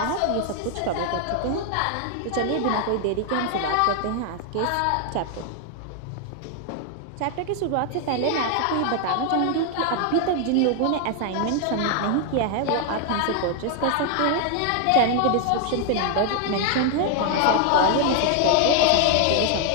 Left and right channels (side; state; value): both; different; correlation 0.00